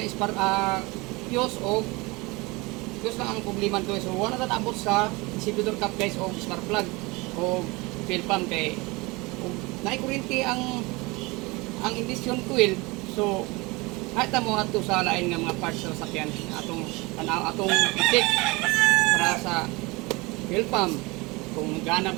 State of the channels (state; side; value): quieter; left; 24.4 dB